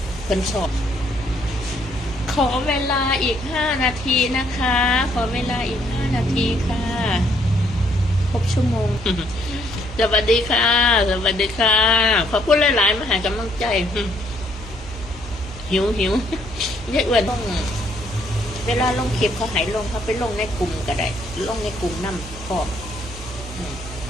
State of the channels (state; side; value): normal; both; correlation 0.68